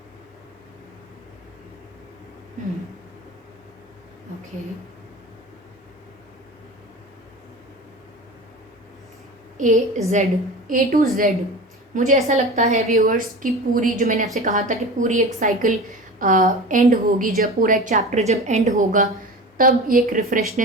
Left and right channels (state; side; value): normal; both; correlation 0.33